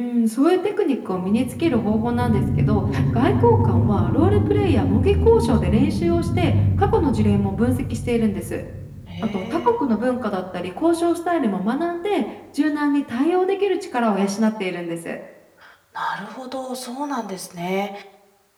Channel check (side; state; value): both; identical; correlation 1.00